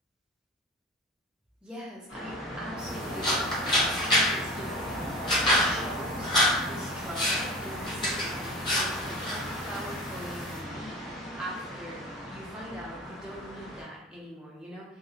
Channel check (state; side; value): normal; both; correlation 0.34